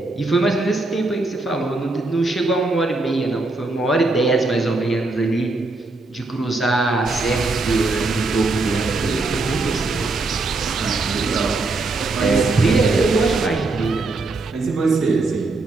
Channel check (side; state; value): left; quieter; 3.3 dB